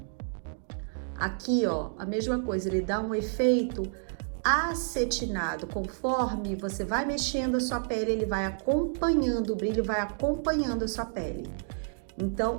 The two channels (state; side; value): silent; left; digital silence